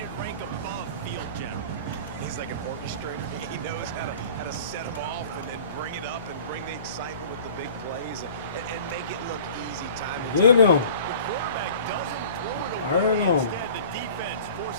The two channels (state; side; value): inverted; both; correlation -0.45